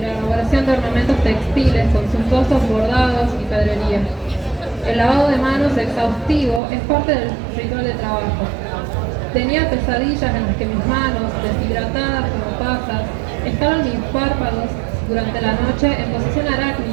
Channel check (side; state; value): left; drops out; at 6.6 s